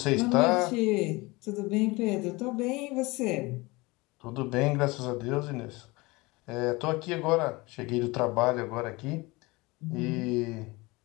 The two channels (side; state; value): right; quieter; 23.5 dB